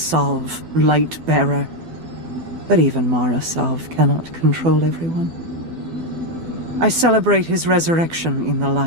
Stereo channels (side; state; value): left; late; 12 ms